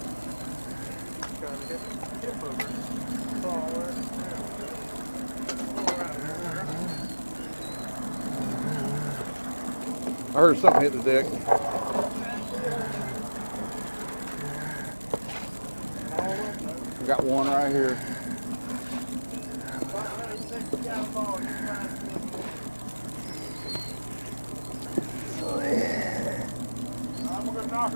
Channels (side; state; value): both; inverted; correlation -1.00